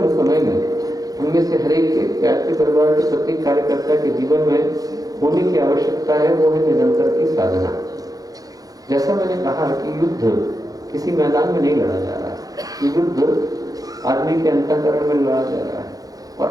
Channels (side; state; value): left; late; 0.18 ms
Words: समय में उनमें से हर एक व्यक्ति परिवार के प्रत्येक कार्यकर्ता के जीवन में होने की आवश्यकता है, वो है निरंतर की साधना। जैसा मैंने कहा कि युद्ध किसी मैदान में नहीं लड़ा जा रहा है, युद्ध आदमी के अंतःकरण में लड़ा जा रहा है। और